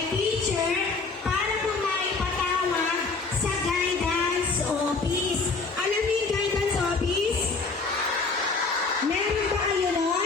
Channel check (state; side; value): quieter; right; 4.1 dB